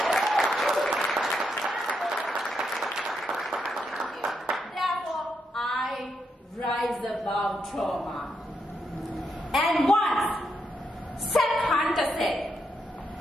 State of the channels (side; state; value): both; normal; correlation 0.81